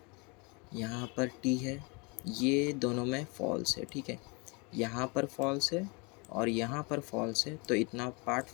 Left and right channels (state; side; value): quieter; right; 30.3 dB